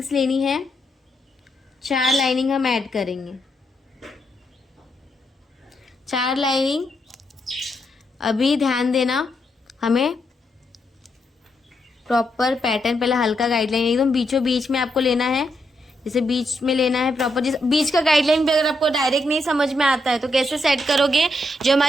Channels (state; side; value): normal; both; correlation 0.80